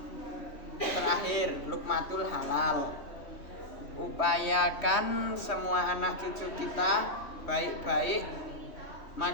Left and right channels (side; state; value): right; late; 3.1 ms